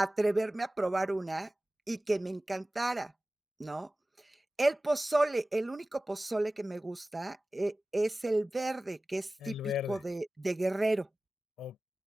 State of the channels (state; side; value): normal; both; correlation 0.97